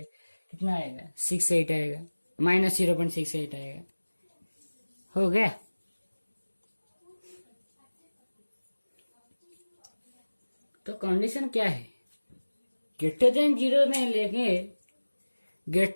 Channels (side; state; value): both; inverted; correlation -1.00